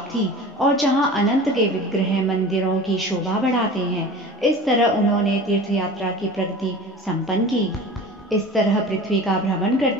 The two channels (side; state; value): both; normal; correlation 0.37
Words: थी और जहाँ अनंत के विग्रह मंदिरों की शोभा बढ़ाते हैं। इस तरह उन्होंने तीर्थ यात्रा की प्रगति संपन्न की। इस तरह पृथ्वी का भ्रमण